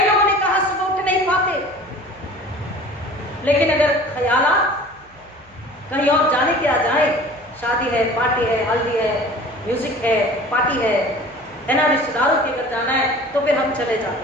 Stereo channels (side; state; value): left; noise; hum, 29 dB below the sound